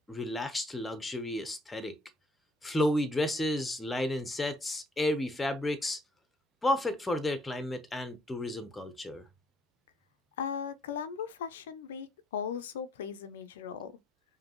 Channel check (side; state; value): both; normal; correlation 0.68